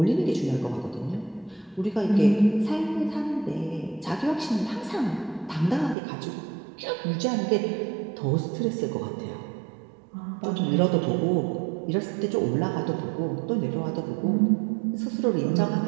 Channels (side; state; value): left; drops out; at 6.0 s